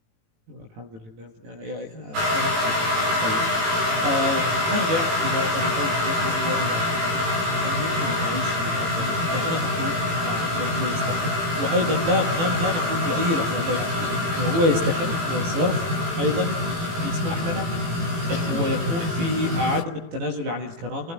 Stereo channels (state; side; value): late; left; 18 ms